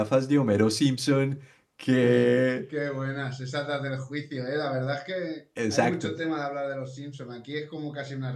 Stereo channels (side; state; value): both; identical; correlation 1.00